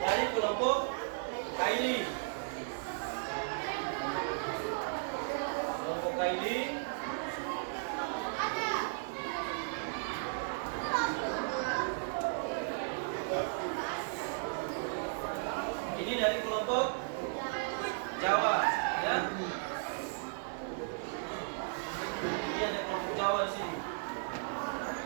kelompok Kaili. Kelompok Kaili. Ini dari kelompok Jawa, ya. Ini ada kelompok Jawa di sini?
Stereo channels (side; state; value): left; silent; 54 dB below the other